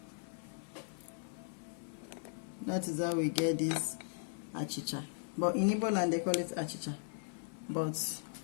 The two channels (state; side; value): silent; right; 53 dB below the other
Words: That is how we get this achicha. But in Igbo land they call it achicha, but